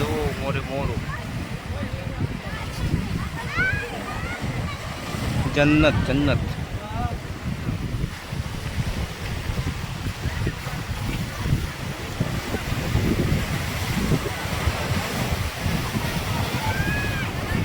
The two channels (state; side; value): identical; both; correlation 1.00